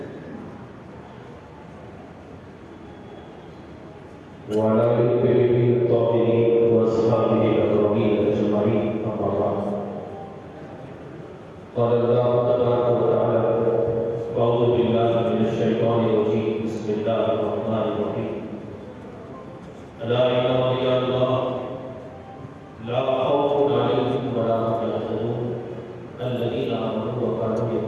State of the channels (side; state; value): both; identical; correlation 1.00